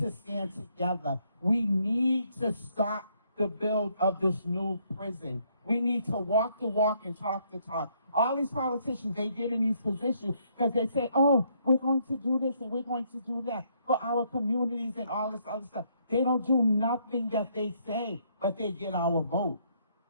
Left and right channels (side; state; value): both; inverted; correlation -0.70